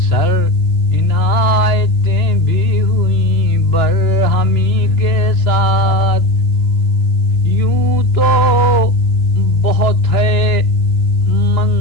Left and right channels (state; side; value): late; right; 2.9 ms